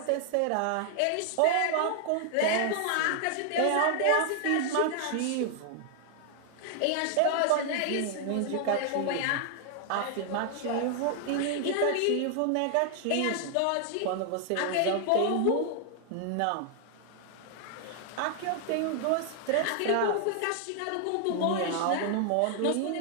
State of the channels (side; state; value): both; different; correlation 0.00